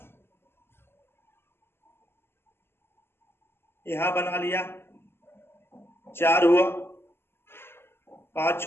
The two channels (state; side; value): late; right; 0.11 ms